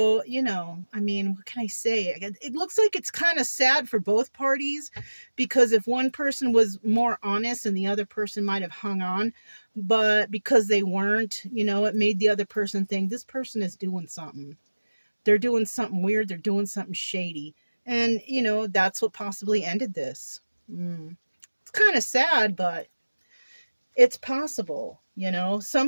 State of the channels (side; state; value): both; inverted; correlation -1.00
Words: you know, I mean, what can I say? It looks like it's kind of sad for both parties, because if one person was more honest and the other person might have hung on, but because they weren't, you know, it made the other person think this person is doing something. They're doing something weird. They're doing something shady. And, you know, that's what possibly ended this. It's kind of sad, but it's possible, you know.